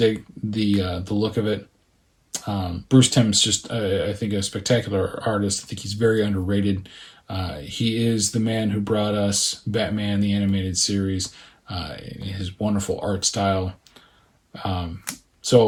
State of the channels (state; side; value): identical; both; correlation 1.00